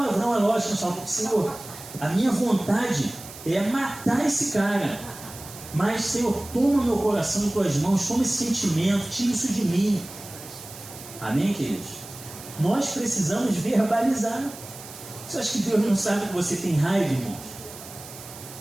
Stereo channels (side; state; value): right; noise; hiss, 15 dB below the sound